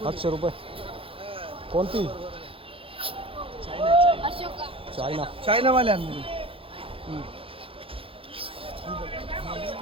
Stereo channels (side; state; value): left; late; 0.27 ms